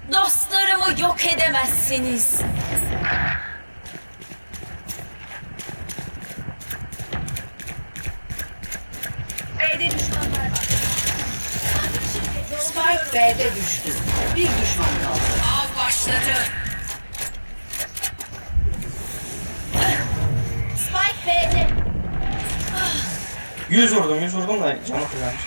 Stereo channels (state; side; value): inverted; both; correlation -1.00